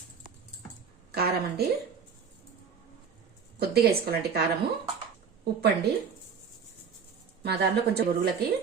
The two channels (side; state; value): left; quieter; 6.3 dB